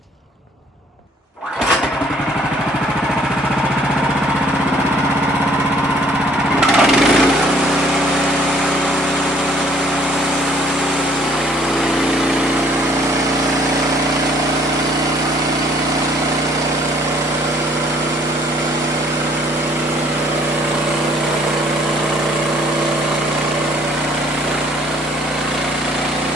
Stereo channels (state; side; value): normal; both; correlation 0.60